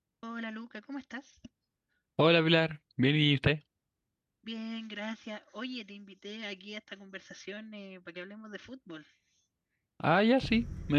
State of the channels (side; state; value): both; identical; correlation 1.00